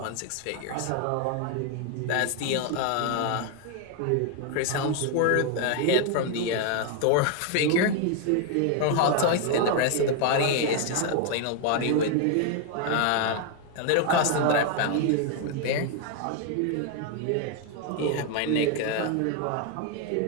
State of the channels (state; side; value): different; both; correlation 0.01